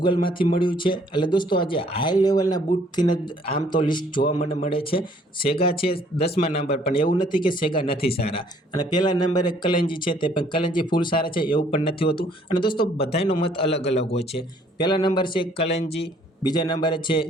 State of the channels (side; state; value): both; normal; correlation 0.61